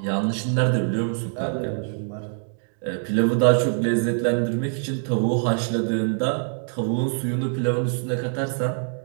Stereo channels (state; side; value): silent; left; 62 dB below the other